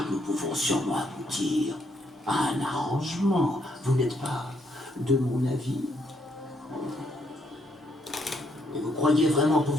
nous pouvons sûrement aboutir à un arrangement. Vous n'êtes pas de mon avis? Et vous croyez vraiment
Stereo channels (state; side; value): normal; both; correlation 0.73